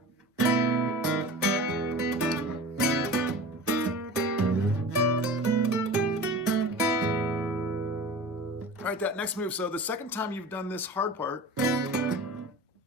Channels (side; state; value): both; normal; correlation 0.36